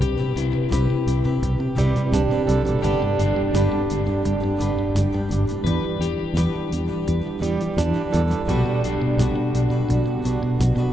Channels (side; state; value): both; normal; correlation 0.84